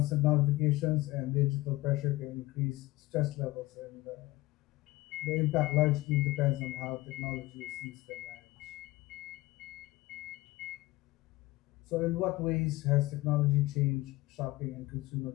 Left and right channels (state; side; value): quieter; right; 19.1 dB